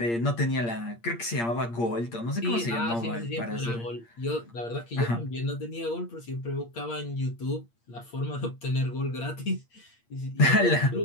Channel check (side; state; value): right; late; 8.6 ms